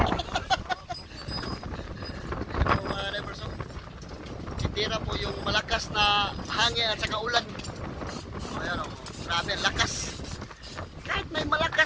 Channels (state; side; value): identical; both; correlation 1.00